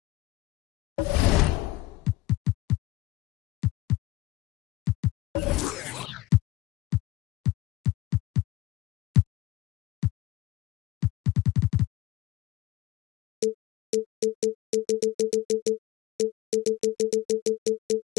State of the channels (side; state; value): right; quieter; 17.7 dB